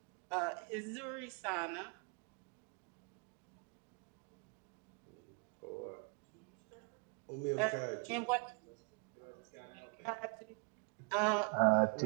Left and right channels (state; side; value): quieter; left; 35.2 dB